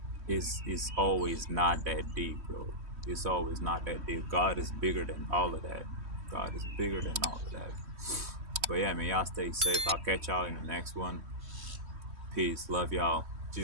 it's always not that deep, bro. It's always not that deep. God is bigger than all of that. God is bigger than all of that. But yeah, man, y'all stay safe. I'll catch y'all in the next one. Peace. Love y'all.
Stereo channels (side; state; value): left; late; 3.1 ms